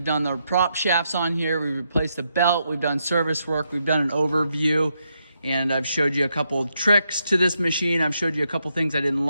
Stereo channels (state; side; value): inverted; both; correlation -0.80